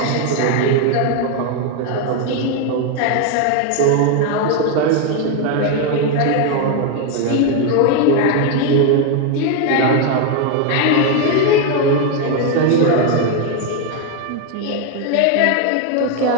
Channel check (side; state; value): both; different; correlation 0.01